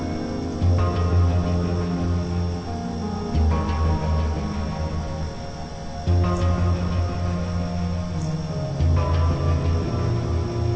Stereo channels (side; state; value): both; identical; correlation 1.00